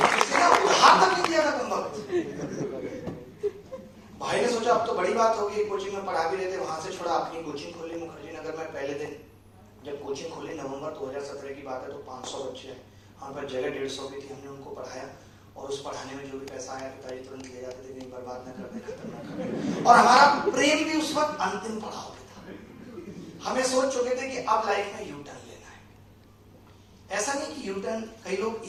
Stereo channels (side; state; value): both; identical; correlation 1.00